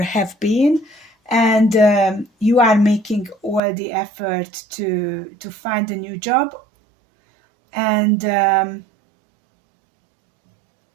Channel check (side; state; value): left; drops out; at 3.6 s